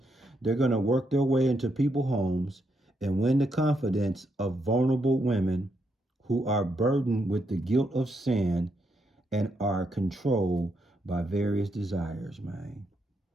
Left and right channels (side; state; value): both; normal; correlation 0.79